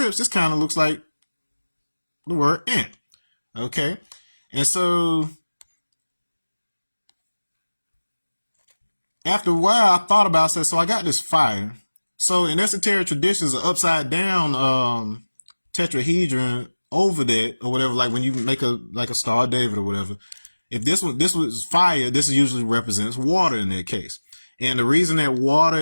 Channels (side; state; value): both; inverted; correlation -1.00